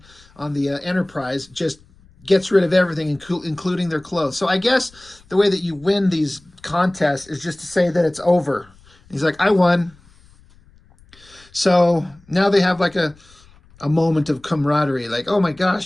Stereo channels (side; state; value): left; noise; rumble, 28 dB below the sound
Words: the Enterprise just gets rid of everything, including their clothes. So I guess the way that you win these contests is just to say that it's over. And he's like, I won. So now they have like a moment of camaraderie, like, oh my